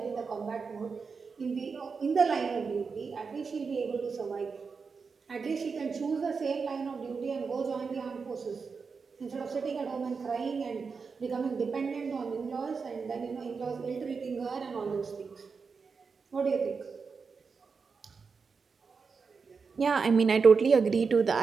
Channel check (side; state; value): left; quieter; 5.2 dB